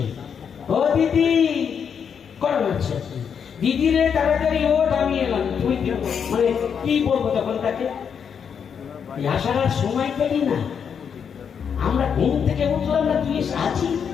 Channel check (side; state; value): right; quieter; 7.2 dB